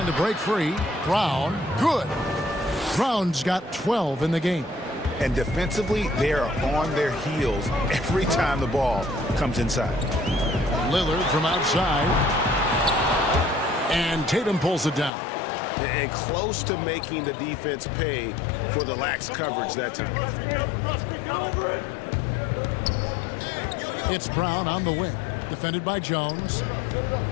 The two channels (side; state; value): right; drops out; at 15.1 s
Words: to break free. Brown. Good. Brown's got 12 in the game. And defensively, they are on their heels every time the ball comes inside. Lillard from outside. And Tatum pulls it down. And close to making the defense pay for the lax coverage that time. It's Brown on the wing. Defended by Jones.